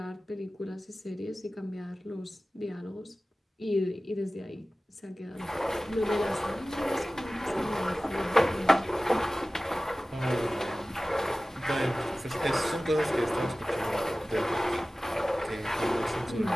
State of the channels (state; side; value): normal; both; correlation 0.97